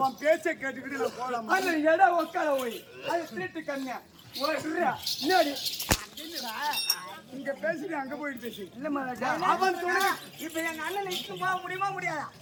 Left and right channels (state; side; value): identical; both; correlation 1.00